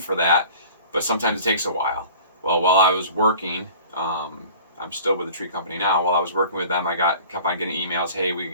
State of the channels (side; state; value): both; inverted; correlation -0.44